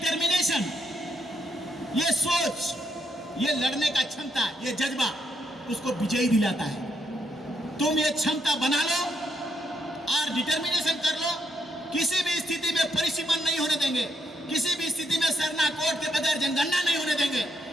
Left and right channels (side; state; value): both; normal; correlation 0.76